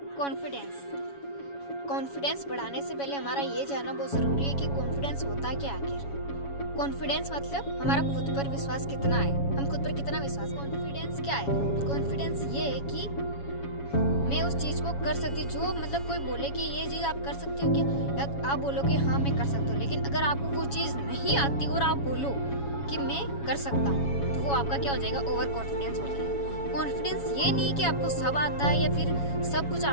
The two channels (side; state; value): right; late; 7.2 ms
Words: कॉन्फिडेंस। कॉन्फिडेंस बढ़ाने से पहले हमारा ये जानना बहुत ज़रूरी है कि कॉन्फिडेंस होता क्या आखिर। कॉन्फिडेंस मतलब हमारा खुद पर विश्वास कितना है, हम खुद पर कितना विश्वास। कॉन्फिडेंस क्या है? कॉन्फिडेंस ये है कि मैं उस चीज़ को कर सकती, जो मतलब कोई बोले कि ये चीज़ आप कर सकते हो क्या, या आप बोलो कि हाँ मैं कर सकता हूँ, लेकिन अगर आपको वो चीज़ नहीं आती और आप बोलो कि मैं कर सकता हूँ, तो वो आपका क्या हो जाएगा? ओवर कॉन्फिडेंस हो जाएगा। कॉन्फिडेंस ये नहीं कि आपको सब आता है या फिर सब कुछ